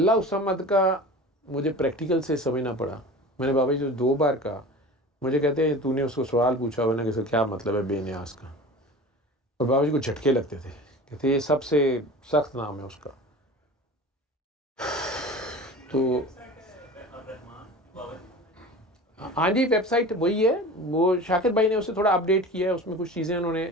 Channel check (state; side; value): normal; both; correlation 0.36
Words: उस समद का मुझे प्रैक्टिकल से समझना पड़ा। मैंने बाबा जी जो 2 बार कहा, मुझे कहते हैं तूने उसको सवाल पूछा हुआ ना कि क्या मतलब है बेनियाज का, और बाबा जी को झटके लगते थे, कहते ये सबसे सख्त नाम है उसका। तो हाँ जी, वेबसाइट वही है, वो शाकिर भाई ने उसे थोड़ा अपडेट किया है, उसमें कुछ चीज़ें उन्होंने